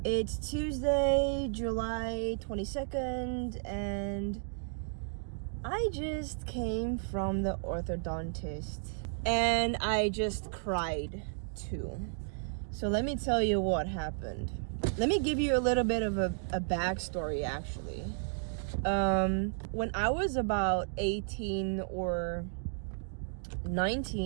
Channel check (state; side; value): silent; left; digital silence